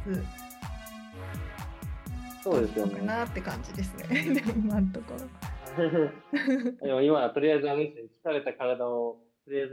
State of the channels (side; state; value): both; identical; correlation 1.00